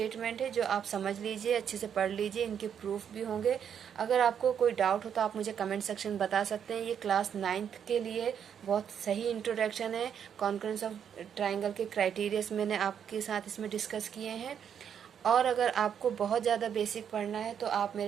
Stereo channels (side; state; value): left; quieter; 8.3 dB